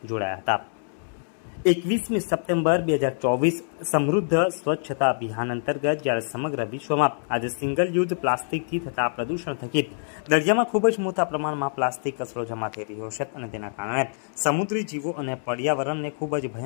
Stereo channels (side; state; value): right; silent; digital silence